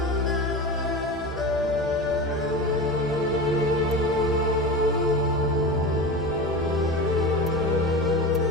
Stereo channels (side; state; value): both; normal; correlation 0.27